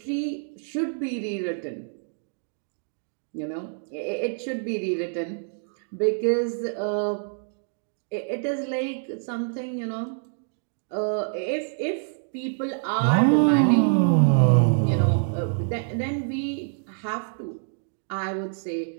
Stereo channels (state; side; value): silent; left; digital silence